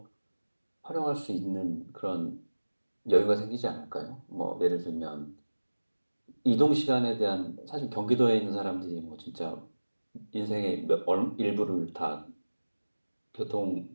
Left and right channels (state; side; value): inverted; both; correlation -1.00